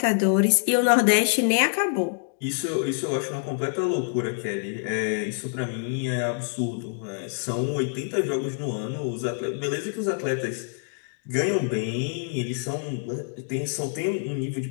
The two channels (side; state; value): right; silent; digital silence